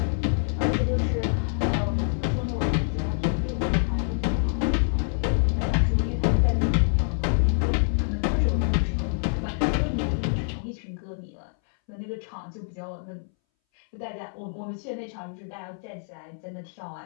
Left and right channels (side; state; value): right; silent; 61 dB below the other